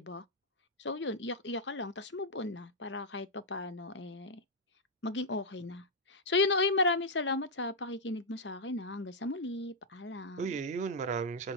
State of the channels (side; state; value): both; normal; correlation -0.04